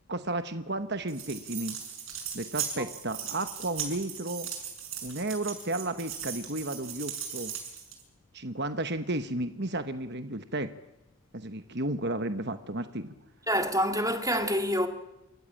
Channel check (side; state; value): both; normal; correlation 0.21